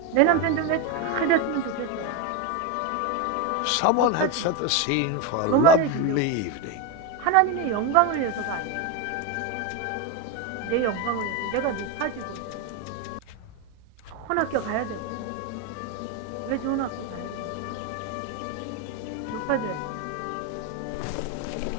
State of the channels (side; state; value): both; different; correlation 0.03